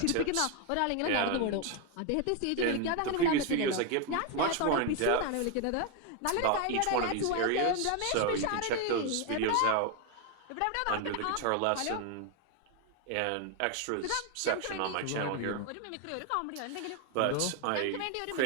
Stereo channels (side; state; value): both; different; correlation 0.01